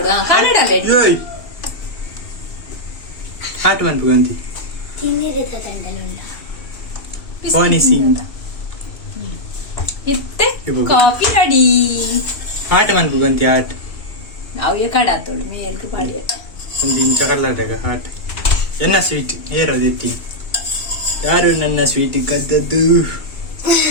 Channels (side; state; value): right; late; 2.8 ms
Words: ಕಲಡಲ ಹಾಟ್ ಬಂತು ಗಂತಿ ತಿನ್ನಿರದ ತಂಡಲುಂಡ Honey sing. ಇತ್ತೆ ಕಾಫಿ ರೆಡಿ. ಹಾಟ್ ಮನ್ಪು ಗಂತಿ ಹಾಟ್. ನಾವು ಏ ಕಡಾತೋಳು ಮೇಲ್ಗೆ ಪಾಡಿ. ಒಂದು ಇಂಚ ಕರ್ಲಾಟಗ ಹಾಟ್. ಎನ್ನ ಸ್ವೀಟ್ ಏರೋದು ಎತ್ತಿ. ಯಾರು ನನ್ನ ಸ್ವೀಟ್ ಕದ್ದದ್ದು?